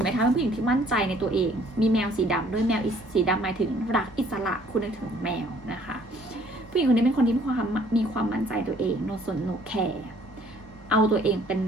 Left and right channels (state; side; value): normal; both; correlation 0.59